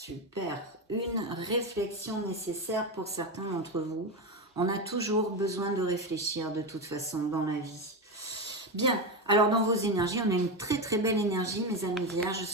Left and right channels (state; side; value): normal; both; correlation 0.15